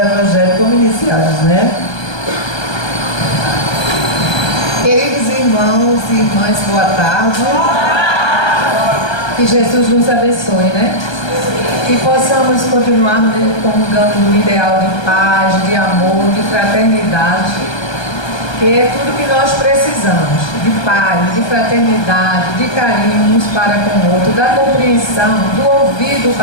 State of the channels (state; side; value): late; right; 1.3 ms